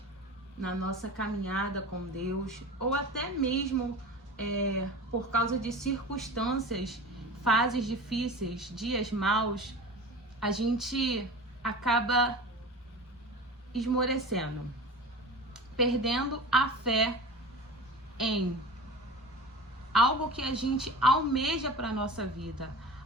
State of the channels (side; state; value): both; normal; correlation 0.34